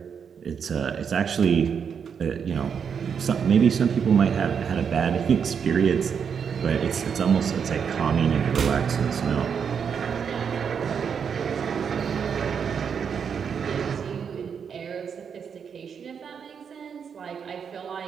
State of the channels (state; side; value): quieter; left; 6.9 dB